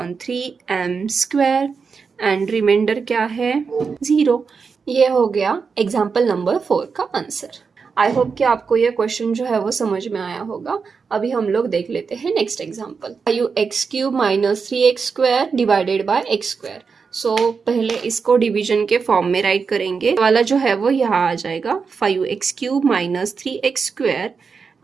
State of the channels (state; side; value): quieter; left; 5.4 dB